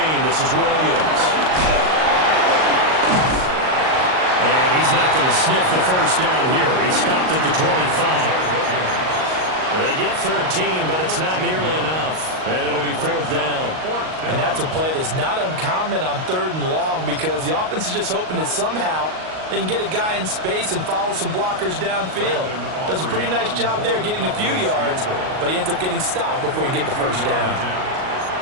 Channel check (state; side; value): late; left; 38 ms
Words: This is Williams. And he's not going to sniff the first down here. He stopped at the 25. They get 13, but it's not nearly enough. And it'll be 4th down. And that's a play that's not uncommon on 3rd and long, because the offense is just hoping that somehow they can get a guy in space and follow some blockers downfield. Does a pretty nice job there getting a few yards, but he ends up getting stopped before he gets the first down.